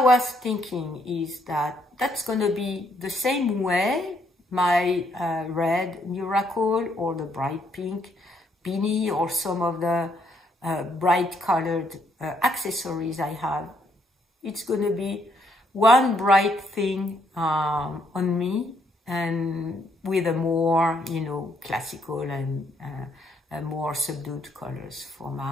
was thinking is that that's going to be the same way my red Miracle or the bright pink beanie or some of the bright colored accessories I have. It's going to be one bright thing on me, and with a more, you know, classical and more subdued colors for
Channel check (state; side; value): normal; both; correlation 0.72